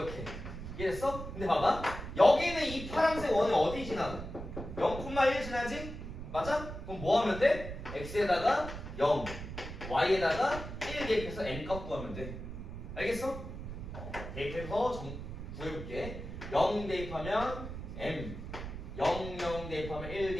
이해됐어? 근데 봐봐. 여기는 이 파란색 원이 어디 지나? 0,1 지나지? 맞아? 그럼 뭐 하면 돼? x에다가 0, y에다가 1 대입해서 n값 구하면 돼. 알겠어? 대입해서 구해볼게. 0 대입하면 m, 0, 0 대입하면 1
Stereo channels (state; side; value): noise; right; rumble, 9 dB below the sound